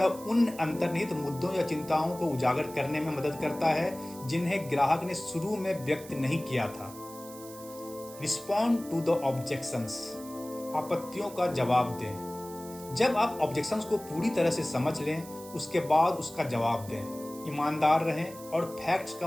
उन अंतर्निहित मुद्दों या चिंताओं को उजागर करने में मदद करता है जिन्हें ग्राहक ने शुरू में व्यक्त नहीं किया था। रिस्पॉन्ड टू द ऑब्जेक्शंस, आपत्तियों का जवाब दें। जब आप ऑब्जेक्शंस को पूरी तरह से समझ लें, उसके बाद उसका जवाब दें। ईमानदार रहें और फैक्ट्स का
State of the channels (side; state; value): right; noise; hiss, 17 dB below the sound